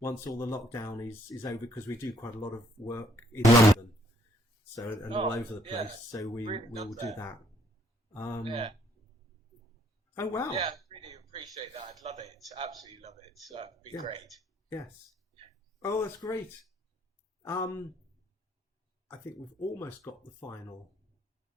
all the lockdown is over, because we do quite a lot of work in London, all over the place. So we will do that. Oh wow! Yeah, I really appreciate that. I'd love it. Absolutely love it. That'd be great. Yes. Oh, that's great. I think we've almost got the final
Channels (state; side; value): normal; both; correlation 0.67